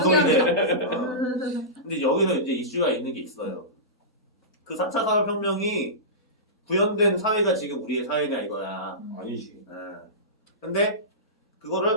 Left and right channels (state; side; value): normal; both; correlation -0.20